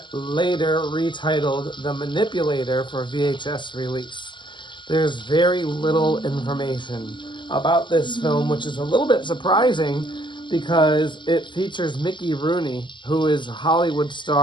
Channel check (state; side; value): late; right; 0.23 ms